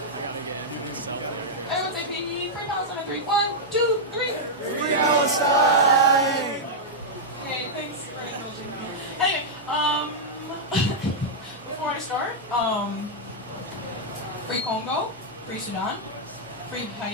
Everyone say Free Palestine on 3. 1, 2, 3. Free Palestine! Okay, thanks for indulging me. Anyway, before I start, Free Congo, Free Sudan, Free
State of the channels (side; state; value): both; normal; correlation -0.05